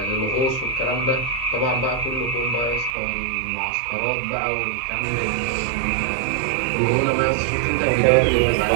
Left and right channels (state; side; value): drops out; left; at 3.0 s